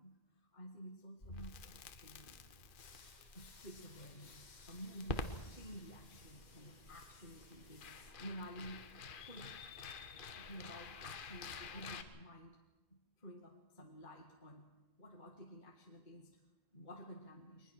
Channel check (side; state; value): right; late; 2.4 ms